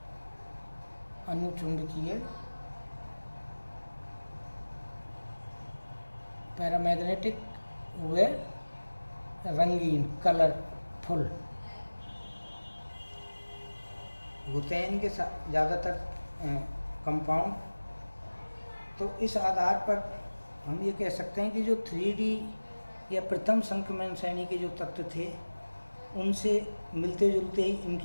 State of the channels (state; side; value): inverted; both; correlation -1.00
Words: अणुचुंबकीय, पैरामैग्नेटिक व रंगीन, कलरफुल होते हैं इनके ज़्यादातर कंपाउंड। तो इस आधार पर हम ये कह सकते हैं कि जो 3D या प्रथम संक्रमण श्रेणी के जो तत्व थे उनसे मिलते जुलते ही